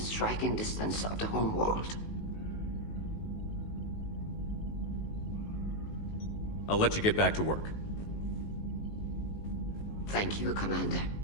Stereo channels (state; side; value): late; right; 19 ms